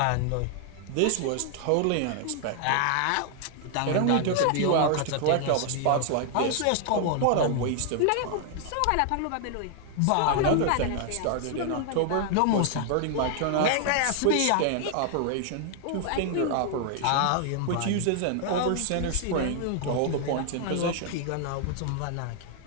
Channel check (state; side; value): different; both; correlation 0.00